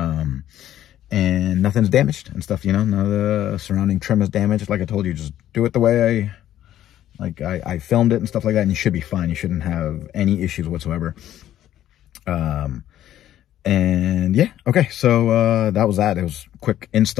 nothing's damaged and stuff, you know, none of the surrounding trim is damaged. Like I told you, just do it the way I filmed it and stuff like that, and you should be fine. You shouldn't have any issues whatsoever. And yeah, okay, so that was that. It was a quick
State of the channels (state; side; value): quieter; right; 12.2 dB